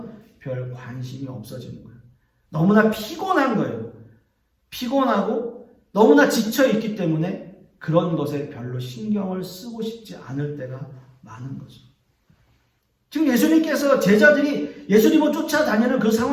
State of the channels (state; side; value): identical; both; correlation 1.00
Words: 별 관심이 없어지는 거예요. 너무나 피곤한 거예요. 피곤하고 너무나 지쳐있기 때문에 그런 것에 별로 신경을 쓰고 싶지 않을 때가 많은 거죠. 지금 예수님께서 제자들이 예수님을 쫓아다니는 그